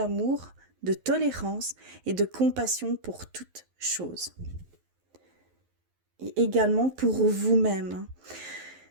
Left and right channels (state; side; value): late; left; 11 ms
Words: de tolérance et de compassion pour toute chose. Et également pour vous-même.